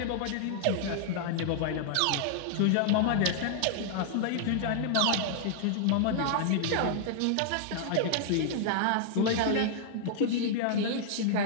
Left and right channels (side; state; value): both; different; correlation -0.01